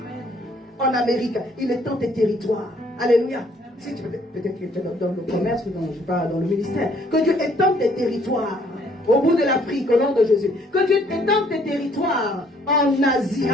En Amérique, il étend tes territoires. Alléluia. Si tu peut-être que tu es dans le commerce ou dans le ministère, que Dieu étende tes territoires. Au bout de l'Afrique, au nom de Jésus. Que Dieu étende tes territoires en Asie.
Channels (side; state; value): both; normal; correlation 0.63